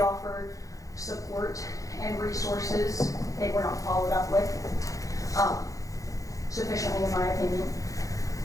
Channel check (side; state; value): right; late; 0.16 ms